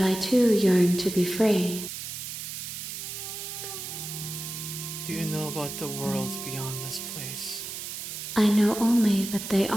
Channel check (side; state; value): right; noise; hiss, 7 dB below the sound